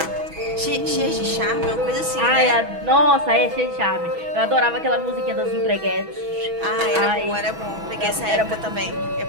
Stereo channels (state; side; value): late; left; 6.1 ms